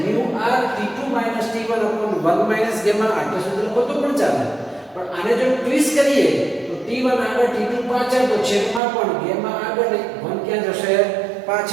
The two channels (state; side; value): drops out; left; at 8.8 s